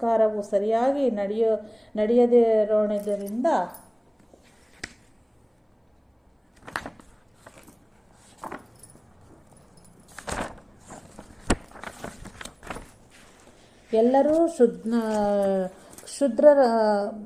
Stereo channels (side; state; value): both; identical; correlation 1.00